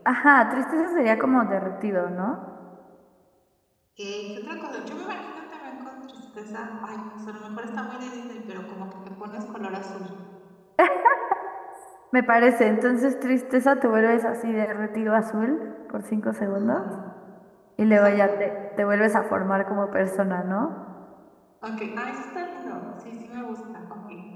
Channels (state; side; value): identical; both; correlation 1.00